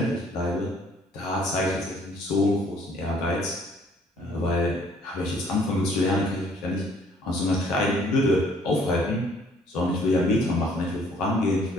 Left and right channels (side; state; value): both; normal; correlation 0.60